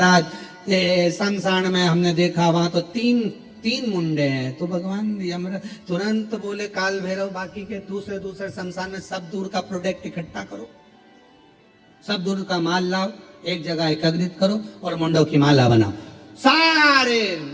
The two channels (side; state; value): both; identical; correlation 1.00